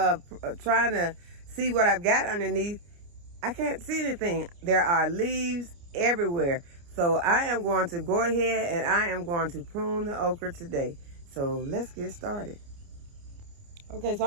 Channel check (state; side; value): late; left; 29 ms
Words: trying to see what I've got underneath, I can't see anything. There are leaves everywhere. So I am going to go ahead and I am going to prune the okra today. So let's get started. Okay, so